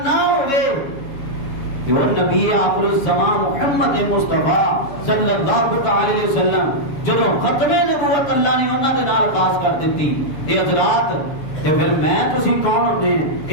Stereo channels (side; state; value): right; late; 7.2 ms